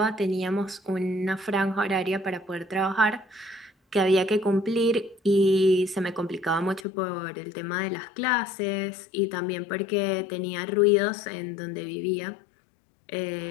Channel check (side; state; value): right; drops out; at 6.9 s